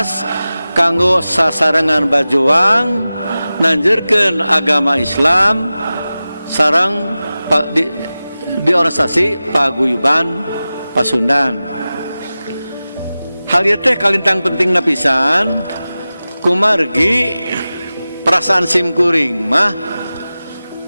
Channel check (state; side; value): inverted; both; correlation -0.96